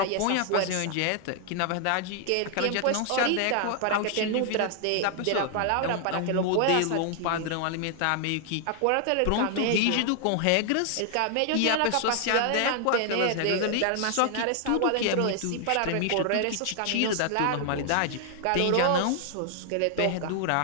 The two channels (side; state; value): both; different; correlation 0.00